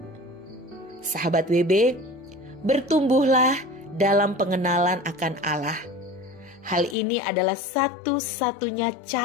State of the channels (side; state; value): right; drops out; at 7.0 s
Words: Sahabat WB, bertumbuhlah dalam pengenalan akan Allah. Hal ini adalah satu-satunya